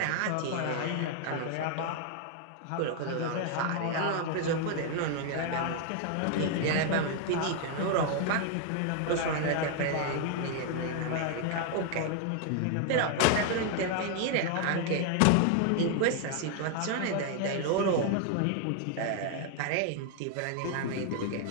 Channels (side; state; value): both; different; correlation 0.00